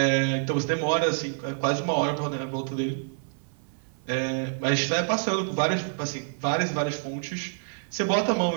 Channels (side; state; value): left; silent; 56 dB below the other